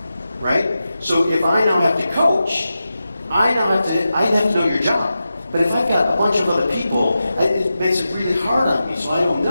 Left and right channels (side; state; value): both; inverted; correlation -0.91